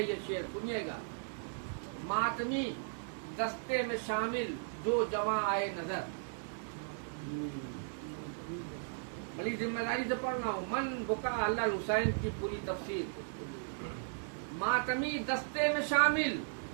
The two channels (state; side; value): silent; left; digital silence